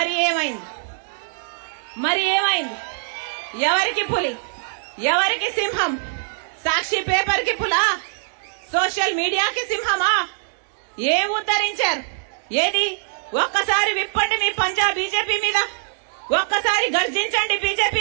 ఏమైంది? ఎవరికి పులి, ఎవరికి సింహం? సాక్షి పేపర్ కి పులా, సోషల్ మీడియాకి సింహమా? ఏం ఉద్ధరించారు? ఏది? ఒక్కసారి విప్పండి మీ పంజా బీజేపీ మీద, ఒక్కసారి గర్జించండి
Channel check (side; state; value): left; silent; 64 dB below the other